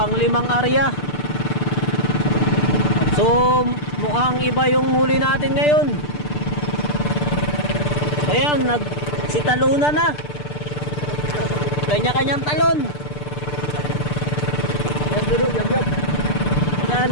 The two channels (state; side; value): late; right; 6.7 ms